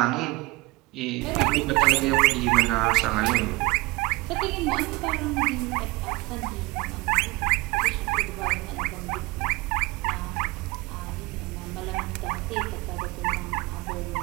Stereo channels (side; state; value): left; quieter; 23.0 dB